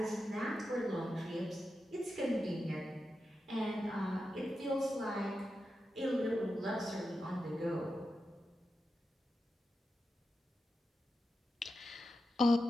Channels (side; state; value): both; normal; correlation 0.90